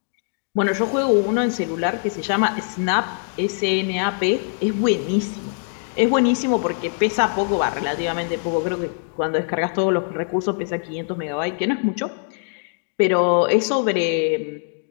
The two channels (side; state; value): right; silent; 64 dB below the other